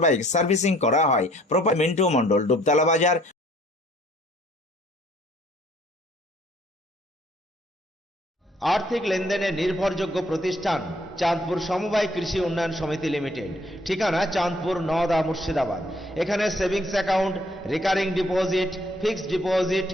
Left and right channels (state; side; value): normal; both; correlation 0.62